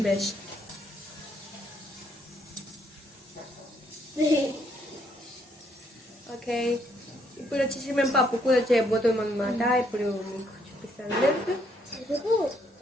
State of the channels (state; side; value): normal; both; correlation 0.71